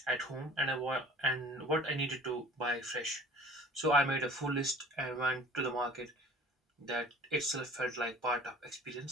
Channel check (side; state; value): both; normal; correlation 0.48